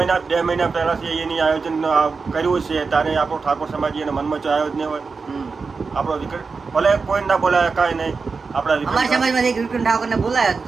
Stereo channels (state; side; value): quieter; left; 4.7 dB